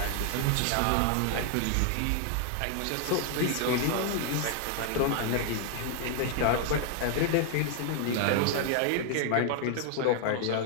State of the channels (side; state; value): both; different; correlation 0.00